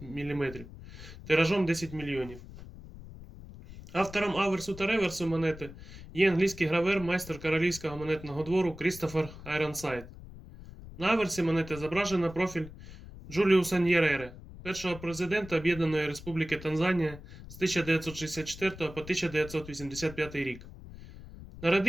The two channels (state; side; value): noise; left; rumble, 15 dB below the sound